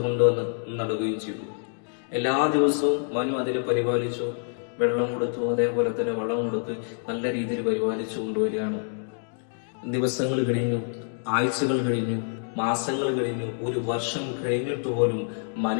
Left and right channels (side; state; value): right; silent; 60 dB below the other